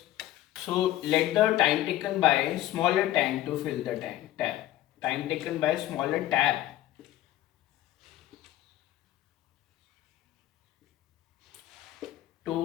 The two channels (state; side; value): quieter; right; 14.3 dB